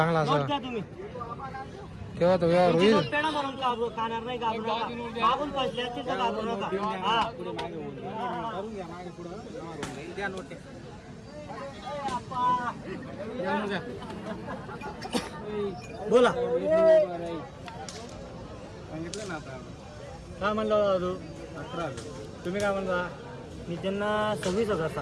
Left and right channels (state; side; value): identical; both; correlation 1.00